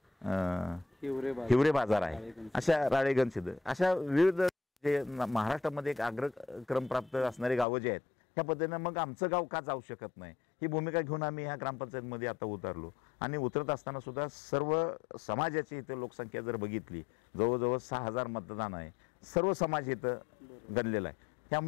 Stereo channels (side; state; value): right; drops out; at 7.7 s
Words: हिवरे बाजार आहे, अशा राळेगणसिद्ध, अशा विविध जे महाराष्ट्रामध्ये एक अग्रक्रम प्राप्त असणारी गावं जी आहेत, ह्या पद्धतीनं मग आमचं गाव का जाऊ शकत नाही ही भूमिका घेऊन आम्ही ह्या ग्रामपंचायतमध्ये आता उतरलो. आणि उतरत असताना सुद्धा सर्व समाजाची इथं लोकसंख्या जर बघितली, जवळजवळ 6000 मतदान आहे, सर्व समाज इथं गणलेला आहे.